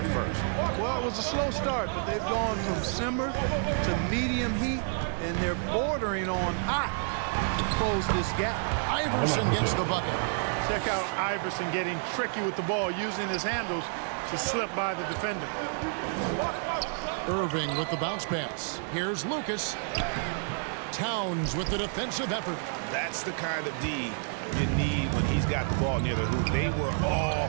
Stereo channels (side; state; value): left; silent; 58 dB below the other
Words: first. Well, it was a slow start, but they've gone from simmer to medium heat, and they're bordering on hot to close this gap. Iverson gets the bucket. Check out Iverson getting tricky with the ball, using his handles to slip by the defender. Irving with the bounce pass. Here's Lucas. Towns with the defensive effort. That's the kind of D you need when he's got the ball near the hoop. They were all